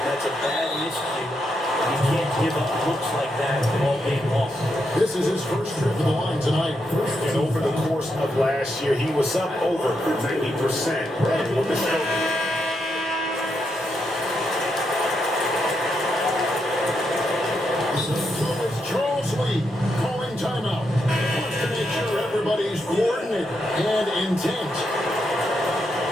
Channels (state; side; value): normal; both; correlation 0.81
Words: That's a bad miscue. You can't give up looks like that all game long. This is his first trip to the line tonight. And over the course of last year, he was up over 90%. And with the stroke, It's Charles Lee calling timeout. Wants to make sure everybody's coordinated and intent.